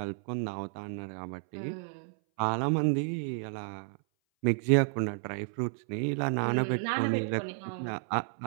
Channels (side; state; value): left; silent; 57 dB below the other